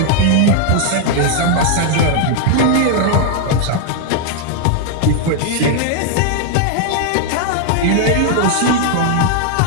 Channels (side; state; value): both; different; correlation 0.00